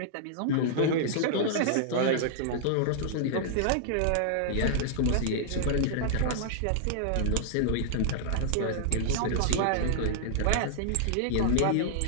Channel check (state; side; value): different; both; correlation -0.01